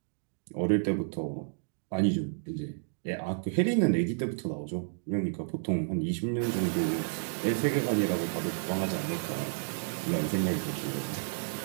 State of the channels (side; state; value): left; silent; digital silence